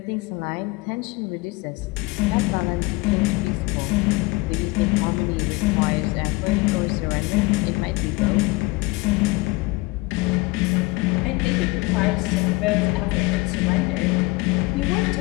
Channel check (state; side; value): quieter; right; 23.3 dB